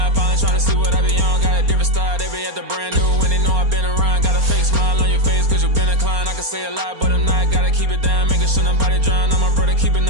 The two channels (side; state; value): left; late; 4.3 ms